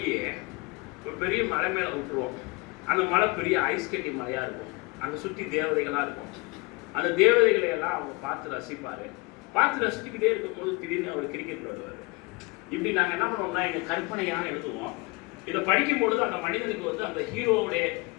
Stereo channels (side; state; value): right; quieter; 26.4 dB